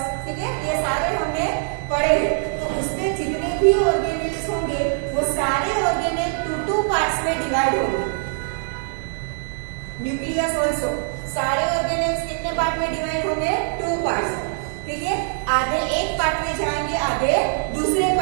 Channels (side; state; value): left; silent; digital silence